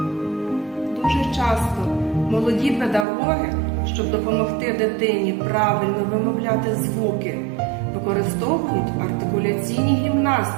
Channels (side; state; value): left; drops out; at 3.1 s